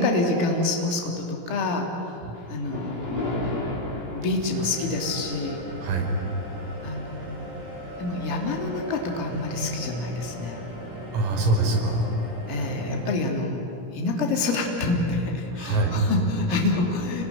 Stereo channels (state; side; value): late; left; 17 ms